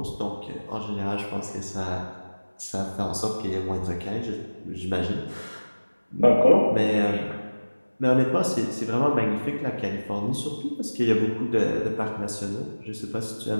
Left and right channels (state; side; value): inverted; both; correlation -1.00